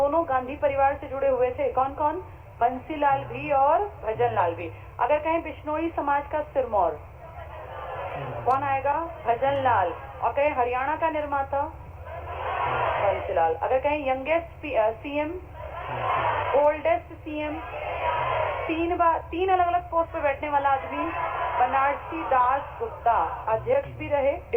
गांधी परिवार से जुड़े हुए थे। कौन कौन? बंसीलाल भी और भजन लाल भी। अगर कहें बिश्नोई समाज का सिरमौर, कौन आएगा? भजन लाल। और कहें हरियाणा का निर्माता, बंसीलाल। अगर कहें यंगेस्ट सीएम, ओल्डेस्ट सीएम, तीन अलग अलग पोस्ट पे बैठने वाला आदमी, बनारसी दास गुप्ता। अध्यक्ष भी रहे,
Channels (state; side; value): identical; both; correlation 1.00